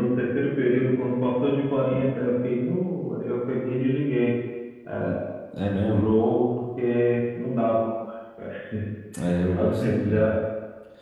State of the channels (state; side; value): identical; both; correlation 1.00